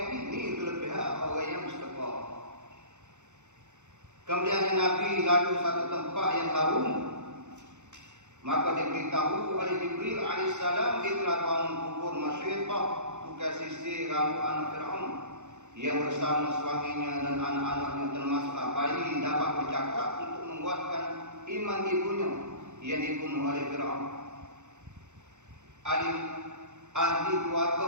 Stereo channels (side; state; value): left; late; 0.84 ms